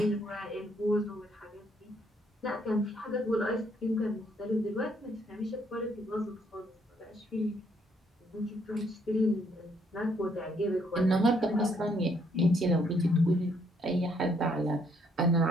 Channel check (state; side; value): normal; both; correlation 0.69